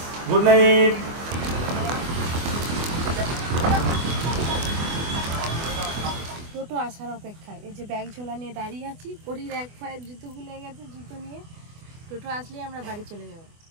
Good night. টোটো আসার অপেক্ষায়, এই যে ব্যাগ ঝোলা নিয়ে দাঁড়িয়ে আছি। পরির এক পায়ের জুতো খুলে গেছে, জুতো নিয়ে টোটো আসলেই আমরা বাড়ি চলে যাবো।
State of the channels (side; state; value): left; late; 24 ms